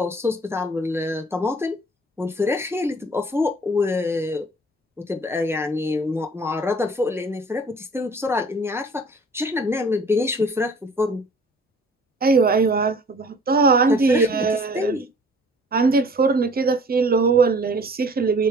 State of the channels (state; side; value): normal; both; correlation 0.51